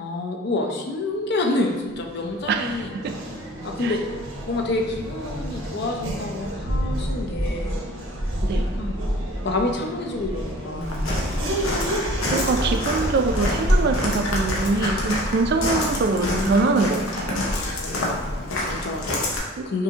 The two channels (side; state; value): both; normal; correlation 0.46